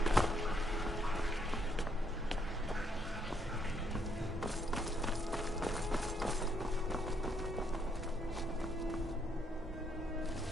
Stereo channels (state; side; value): normal; both; correlation 0.72